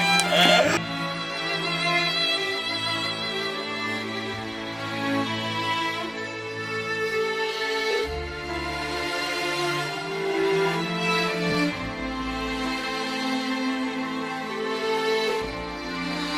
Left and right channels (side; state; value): both; identical; correlation 1.00